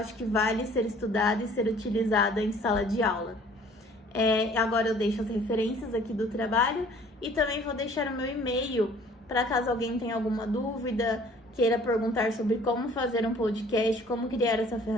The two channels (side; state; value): both; normal; correlation 0.54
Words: que vale ser estudada e ser utilizada em sala de aula. Agora eu deixo as referências aqui do trabalho e também vou deixar o meu e-mail para caso alguém tenha alguma dúvida, queira perguntar sobre como fazer um podcast, como criar essa